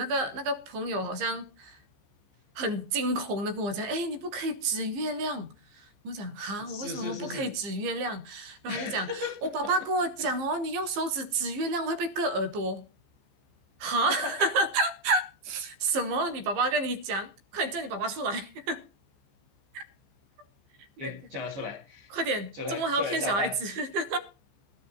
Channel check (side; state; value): left; late; 15 ms